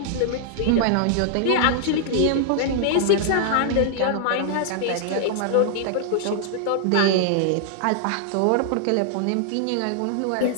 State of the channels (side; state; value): both; different; correlation -0.01